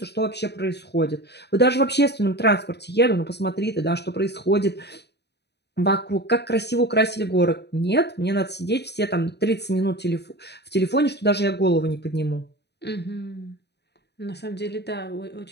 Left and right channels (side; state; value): right; late; 0.49 ms